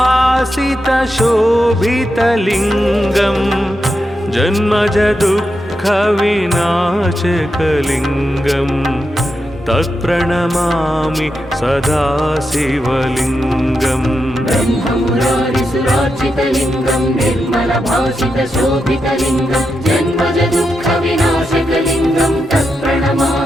जन्मजदुःखविनाशकलिङ्गं तत्प्रणमामि सदा शिवलिङ्गम् ब्रह्ममुरारिसुरार्चितलिङ्गं निर्मलभासितशोभितलिङ्गं जन्मजदुःखविनाशकलिङ्गं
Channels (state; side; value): normal; both; correlation 0.86